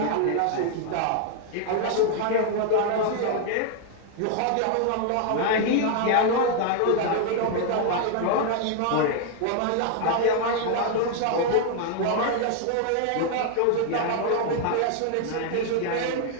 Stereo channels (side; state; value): both; different; correlation 0.00